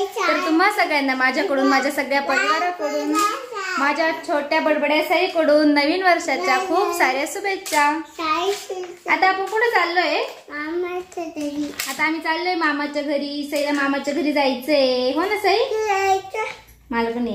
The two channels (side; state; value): both; identical; correlation 1.00